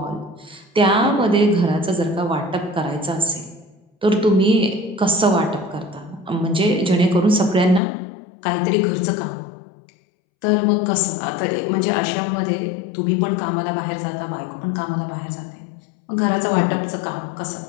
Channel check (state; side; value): drops out; right; at 7.8 s